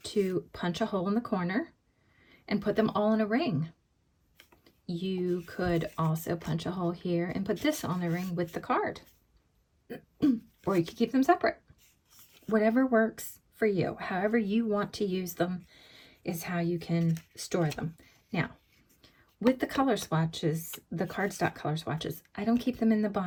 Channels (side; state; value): both; identical; correlation 1.00